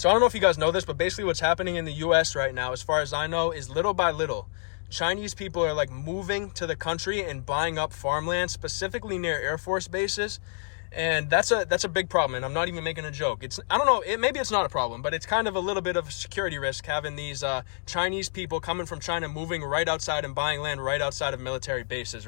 So I don't know if you guys know this, but basically what's happening in the US right now, as far as I know, is little by little, Chinese people are like moving to the country and buying up farmland, specifically near Air Force bases. And that's a big problem, and I'm not even making a joke. I don't know, maybe it's not a problem, but it's kind of a little bit of a security risk having these Chinese people coming from China moving right outside and buying land right outside of military bases,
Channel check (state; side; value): silent; right; digital silence